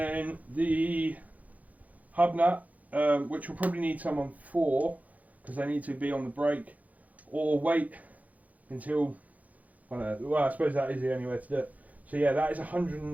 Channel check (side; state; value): left; late; 0.075 ms